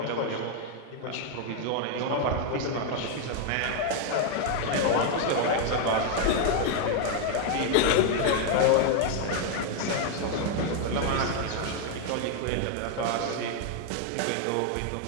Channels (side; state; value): both; different; correlation 0.00